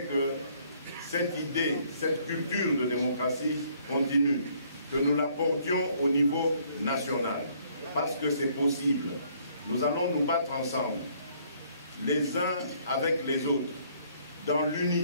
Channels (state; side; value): inverted; both; correlation -0.64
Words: que cette idée, cette culture de démocratie continue, que nous la portions au niveau national, parce que c'est possible. Nous allons nous battre ensemble, les uns avec les autres, dans